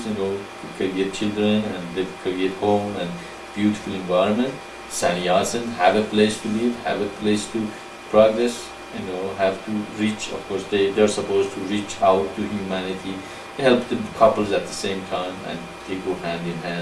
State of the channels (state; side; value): identical; both; correlation 1.00